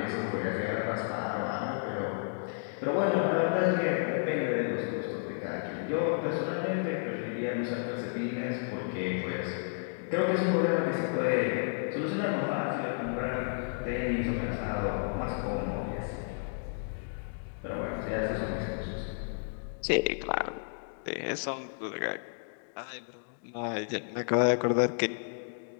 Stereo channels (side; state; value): right; silent; digital silence